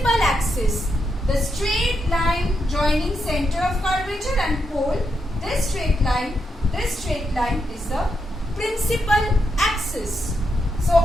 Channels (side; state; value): both; normal; correlation 0.82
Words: axis. The straight line joining center of curvature and pole. This straight line is the principal axis. So